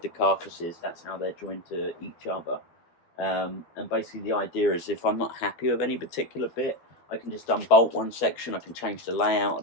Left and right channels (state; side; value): late; right; 12 ms